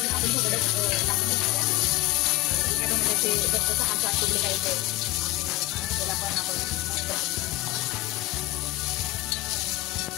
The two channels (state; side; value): quieter; right; 19.3 dB